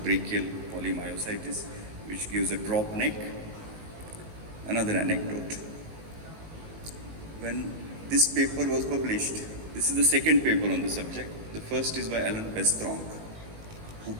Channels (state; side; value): late; left; 18 ms